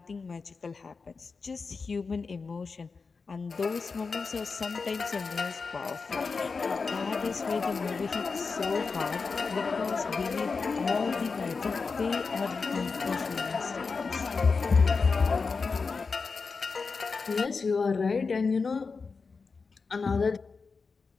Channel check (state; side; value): quieter; right; 4.7 dB